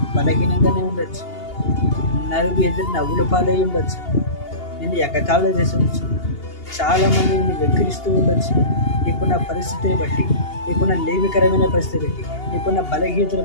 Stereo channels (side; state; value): right; late; 2.8 ms